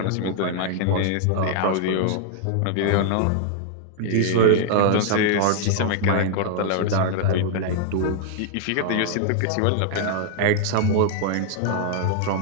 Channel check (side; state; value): both; different; correlation -0.01